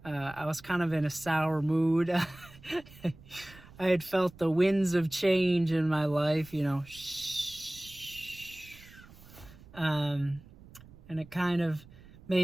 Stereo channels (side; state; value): right; noise; rumble, 21 dB below the sound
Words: I was kind of in a sour mood. I had felt the winds of change in my life, you know. And it kind of